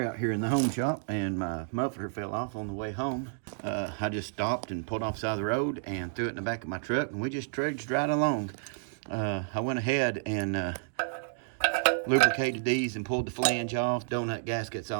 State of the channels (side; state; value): left; silent; digital silence